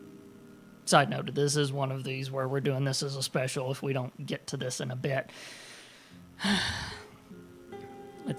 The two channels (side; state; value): both; identical; correlation 1.00